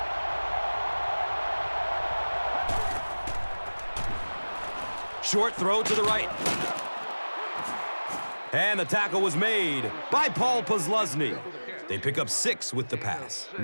Short throw to the right. And the tackle was made by Paul Posluszny. They pick up 6 with the pass.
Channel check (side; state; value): both; inverted; correlation -1.00